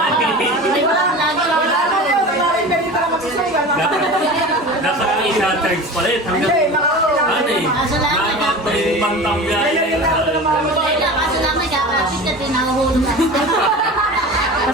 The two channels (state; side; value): normal; both; correlation 0.33